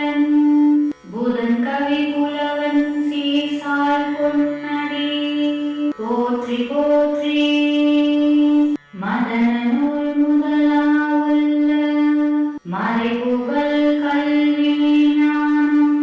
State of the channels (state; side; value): identical; both; correlation 1.00